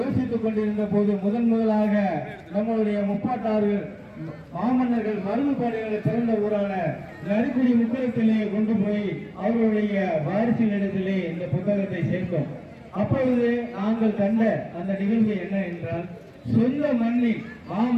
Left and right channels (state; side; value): identical; both; correlation 1.00